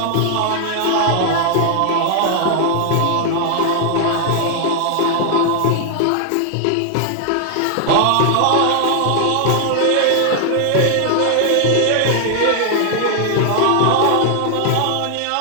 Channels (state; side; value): different; both; correlation 0.00